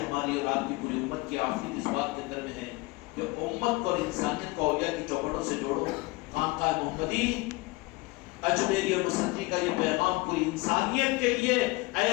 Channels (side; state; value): right; quieter; 23.4 dB